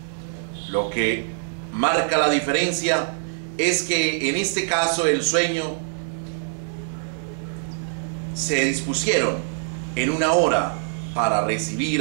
Lo que marca la diferencia es que en este caso el sueño se dispusieron en una hora para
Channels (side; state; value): left; silent; 63 dB below the other